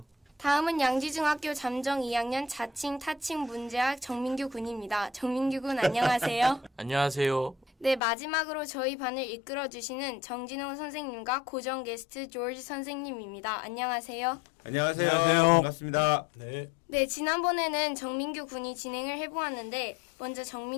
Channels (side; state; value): right; drops out; at 8.0 s